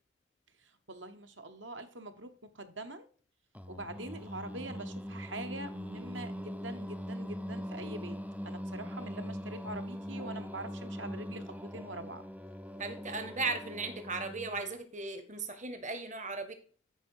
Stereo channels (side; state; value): both; normal; correlation 0.33